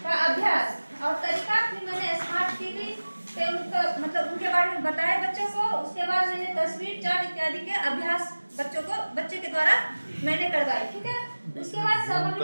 का अभ्यास और तरीका। फिर मैंने स्मार्ट टीवी पे उनका मतलब उनके बारे में बताया बच्चों को। उसके बाद मैंने तस्वीर, चार्ट इत्यादि के अभ्यास बच्चे के द्वारा मैंने करवाई। ठीक है, उसके बाद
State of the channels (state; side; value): inverted; both; correlation -1.00